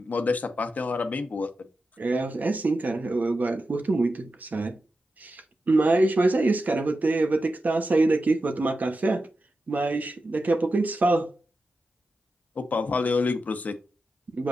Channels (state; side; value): normal; both; correlation 0.90